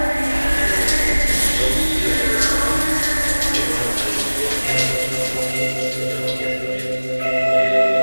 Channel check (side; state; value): both; inverted; correlation -1.00